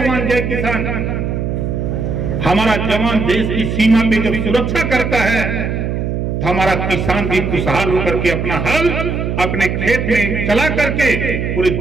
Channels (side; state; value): right; noise; hum, 2 dB below the sound